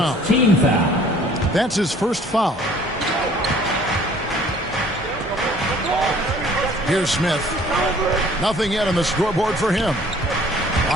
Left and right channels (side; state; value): both; normal; correlation 0.55